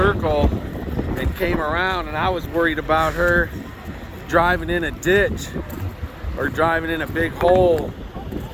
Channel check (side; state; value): both; identical; correlation 1.00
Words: and came around, and I was worried about her driving in a ditch or driving in a big hole.